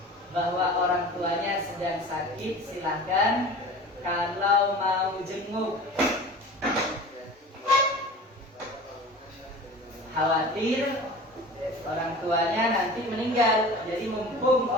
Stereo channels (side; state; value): both; normal; correlation 0.38